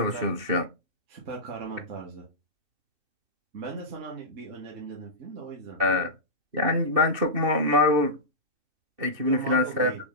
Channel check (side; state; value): left; late; 2.7 ms